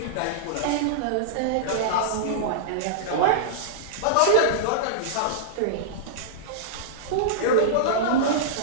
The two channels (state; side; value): different; both; correlation -0.02